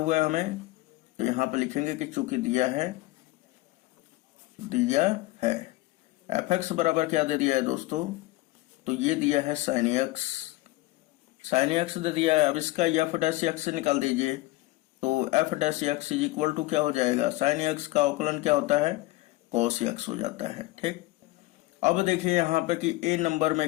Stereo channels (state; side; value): quieter; right; 19.1 dB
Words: है हमें, तो यहाँ पे लिखेंगे कि चूंकि दिया है f(x) बराबर क्या दे दिया है दोस्तों, तो ये दिया है sin x दे दिया है। अब इसका f' से निकाल दीजिए, तो f' इक्वल टू क्या हो जाएगा, sin x का अवकलन क्या होता है, cos x हो जाता है। ठीक, अब देखिए यहाँ पे कि a नंबर